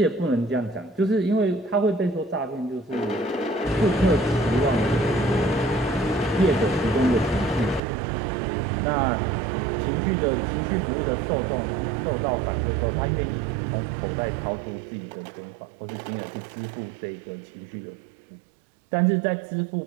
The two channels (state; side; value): drops out; left; at 7.8 s